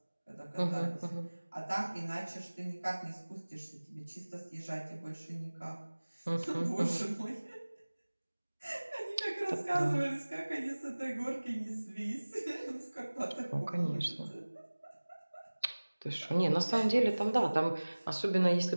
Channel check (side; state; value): both; inverted; correlation -1.00